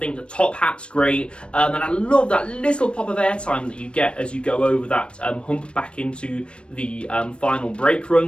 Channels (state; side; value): late; right; 0.057 ms